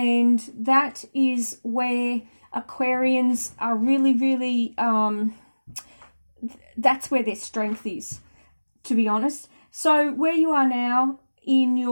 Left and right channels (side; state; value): both; inverted; correlation -1.00